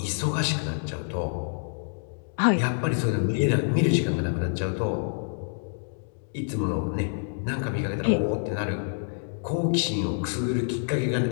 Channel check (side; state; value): right; silent; digital silence